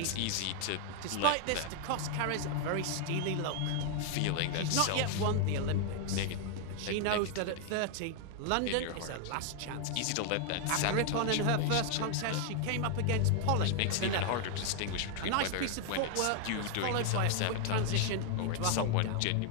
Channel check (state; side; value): different; both; correlation 0.00